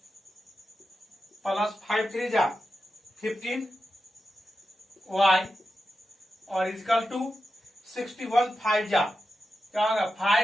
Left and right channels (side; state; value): both; normal; correlation 0.90